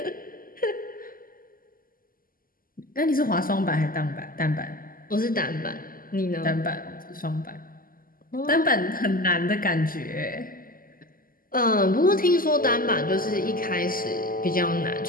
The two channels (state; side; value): late; right; 0.42 ms